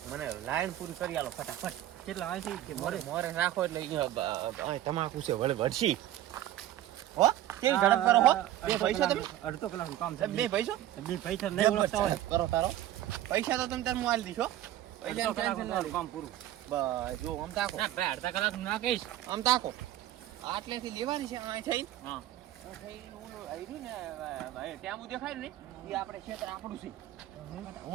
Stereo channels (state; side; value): quieter; left; 13.2 dB